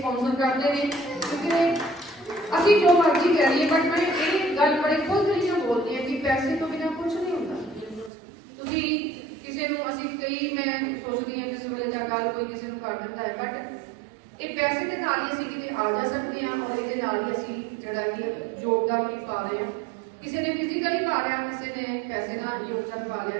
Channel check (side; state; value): left; drops out; at 8.1 s